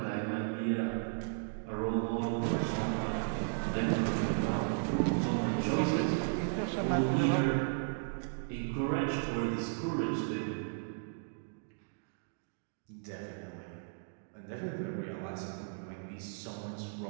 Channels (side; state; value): left; silent; digital silence